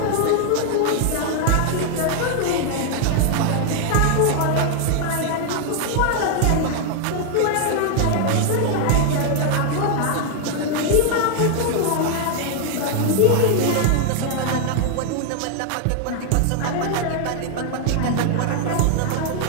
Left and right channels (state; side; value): different; both; correlation 0.00